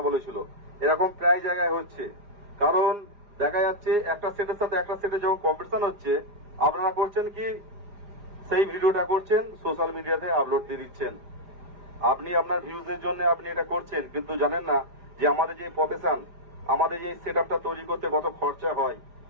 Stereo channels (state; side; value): late; left; 4.9 ms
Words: বলেছিল। এরকম প্রায় জায়গায় হচ্ছে, কারণ দেখা যাচ্ছে একটা সেটের সাথে একটা সেটে যখন কম্পিটিশন হচ্ছে, আপনারা করছেন কি, সেই ভিডিওটা করছেন সোশ্যাল মিডিয়াতে আপলোড দিয়ে দিচ্ছেন। আপনি আপনার ভিউজের জন্য আপনি এটা করছেন, কিন্তু জানেন না যে আমাদের যে প্রফেশন, আমাদের যে সেট আপটা তৈরি করতে কত খরচা হয়,